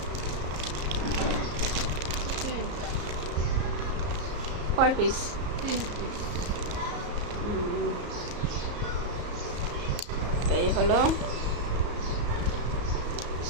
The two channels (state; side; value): late; left; 34 ms